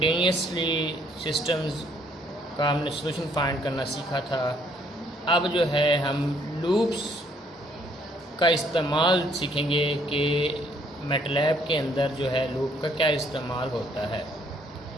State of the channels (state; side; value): normal; both; correlation 0.66